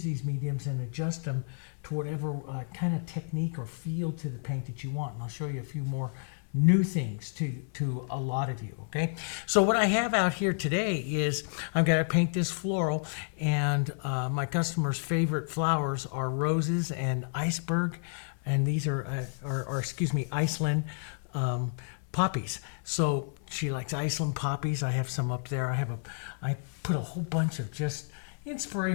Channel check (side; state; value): right; silent; digital silence